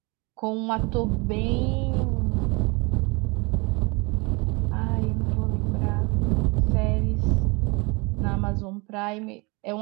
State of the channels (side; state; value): left; quieter; 27.9 dB